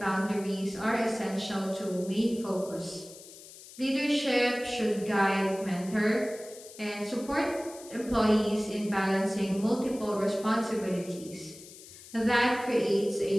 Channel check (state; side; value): noise; left; hiss, 18 dB below the sound